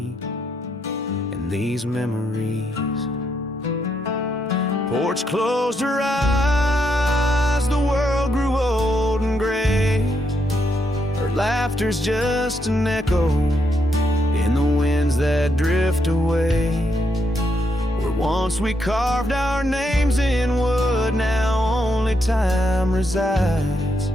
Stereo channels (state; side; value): normal; both; correlation 0.78